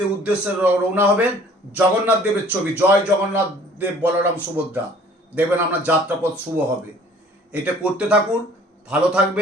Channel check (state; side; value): normal; both; correlation 0.53